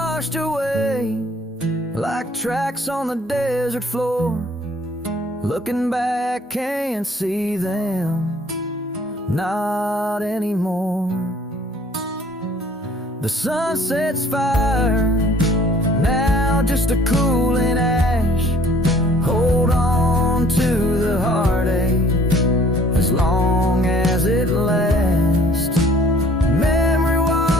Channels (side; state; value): both; normal; correlation 0.56